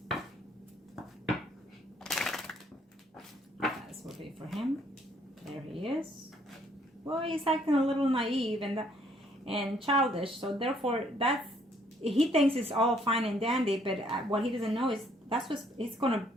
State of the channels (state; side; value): normal; both; correlation 0.65